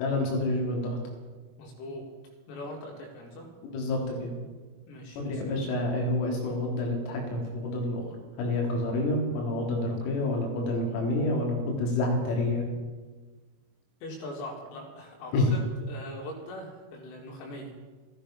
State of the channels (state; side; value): late; right; 21 ms